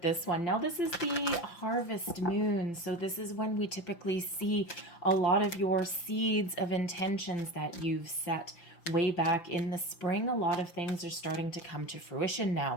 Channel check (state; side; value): late; right; 5.8 ms